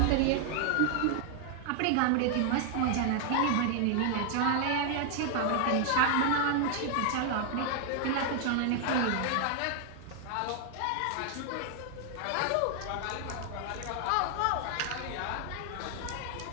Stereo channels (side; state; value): both; different; correlation 0.00